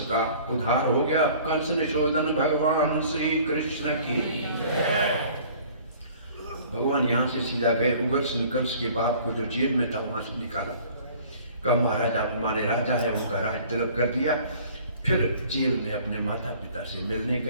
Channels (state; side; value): inverted; both; correlation -0.51